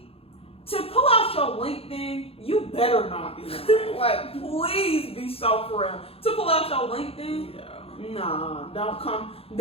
to pull out your LinkedIn, you better not be lying. Like, please be so for real. To pull out your LinkedIn, nah,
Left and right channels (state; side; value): late; right; 0.28 ms